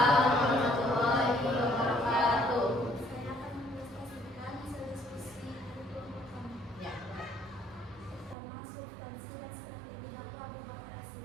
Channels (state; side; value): drops out; left; at 8.3 s